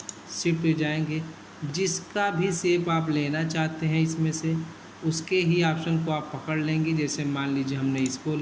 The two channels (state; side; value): identical; both; correlation 1.00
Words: शिफ्ट पे जाएंगे, जिसका भी शेप आप लेना चाहते हैं इसमें से उसके ही ऑप्शन को आप पकड़ लेंगे। जैसे मान लीजिए हमने इसको